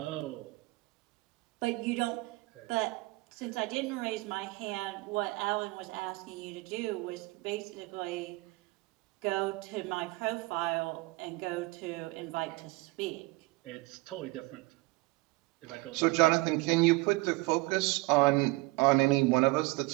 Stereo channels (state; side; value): quieter; left; 23.0 dB